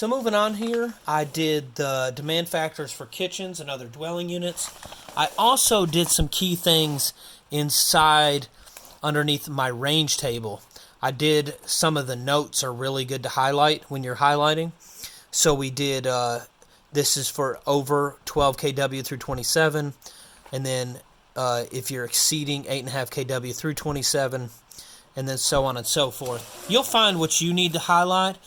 moving on here, I did the demand factors for kitchens and other dwelling units. I also did some key things inside underneath my range table. I did some of the notes are really good to highlight when you're highlighting. So we did... this is for over 12 kW through 27, and then if you're exceeding 8.5 kW through 27, and then so on and so forth. You'll find what you need to highlight.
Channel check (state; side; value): identical; both; correlation 1.00